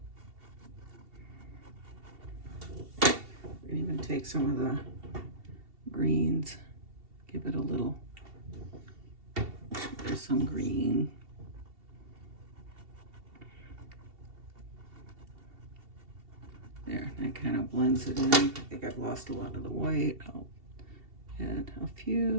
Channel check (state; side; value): late; left; 2.7 ms